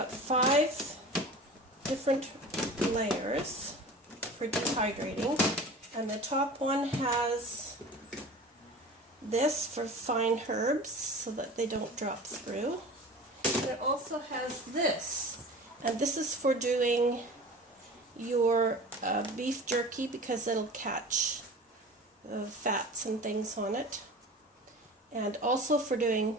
5 different layers for dehydrating, and the top one has this for fine herbs so that they don't drop through. And it also has this, and this is for doing your beef jerky because it'll catch fats and things on it, and also for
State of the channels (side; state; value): both; normal; correlation 0.37